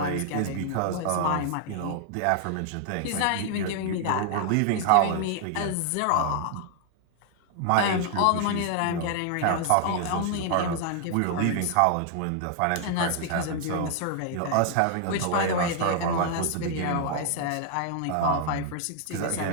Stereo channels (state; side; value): different; both; correlation 0.00